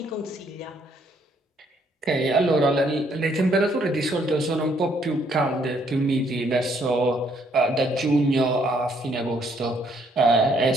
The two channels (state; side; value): normal; both; correlation 0.68